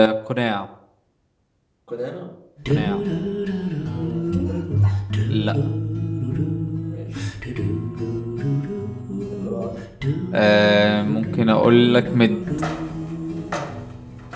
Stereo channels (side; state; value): both; identical; correlation 1.00